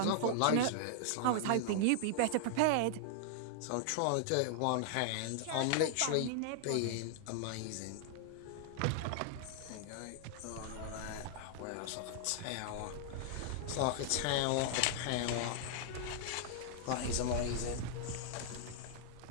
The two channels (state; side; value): different; both; correlation 0.00